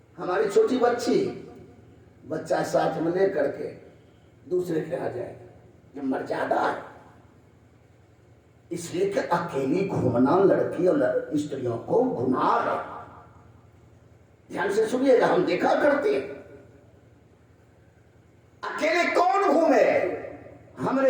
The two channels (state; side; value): identical; both; correlation 1.00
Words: हमारी छोटी बच्चा साथ में ले करके दूसरे के यहाँ जाएगा, ये मर्यादा है। इसलिए कि अकेली घूमना लड़की और स्त्रियों को गुनाह है। ध्यान से सुनिएगा, हम देखा करते हैं अकेले कौन घूमे।